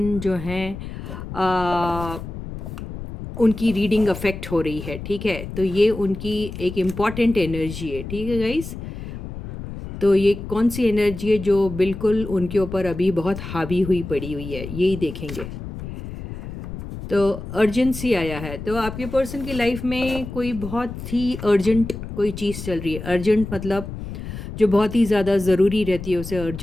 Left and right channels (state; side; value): noise; left; rumble, 9 dB below the sound